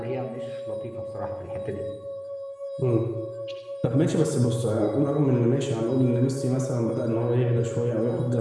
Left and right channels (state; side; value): identical; both; correlation 1.00